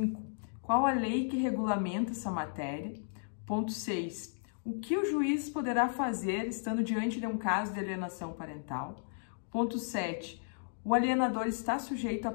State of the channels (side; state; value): right; silent; digital silence